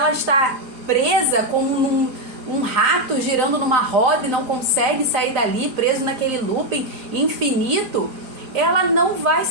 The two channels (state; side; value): late; left; 4.9 ms